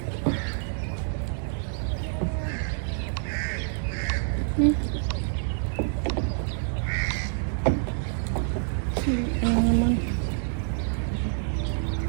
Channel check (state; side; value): silent; left; digital silence